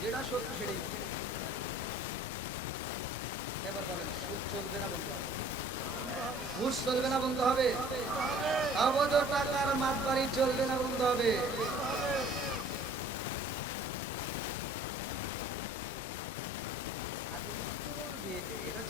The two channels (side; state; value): both; normal; correlation 0.51